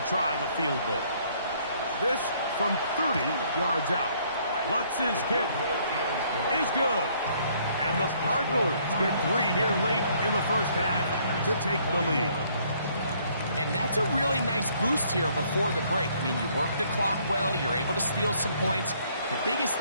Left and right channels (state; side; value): inverted; both; correlation -0.64